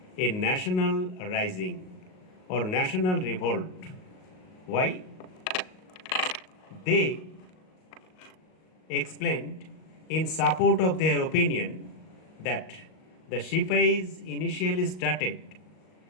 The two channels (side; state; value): right; late; 38 ms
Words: a national rising or national revolt. Why? They explained in support of their opinion that the Shipais initially started,